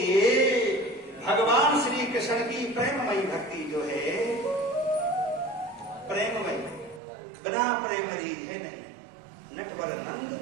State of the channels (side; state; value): left; drops out; at 7.0 s